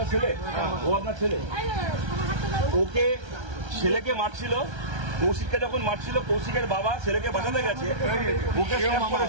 ছেলে, ও আপনার ছেলে, ওকে ছেলেকে মারছিল, কৌশিককে যখন মারছিল, কৌশিকের বাবা ছেলেকে বাঁচাতে গেছে, ওকে স্ট্যাপ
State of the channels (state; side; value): late; left; 1.3 ms